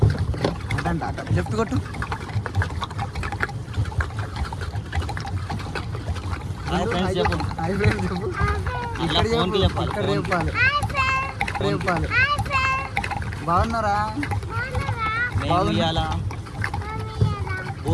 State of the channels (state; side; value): identical; both; correlation 1.00